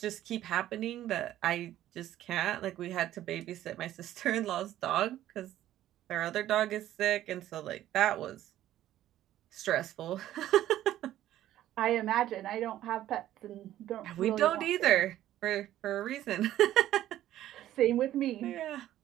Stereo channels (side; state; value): left; quieter; 13.1 dB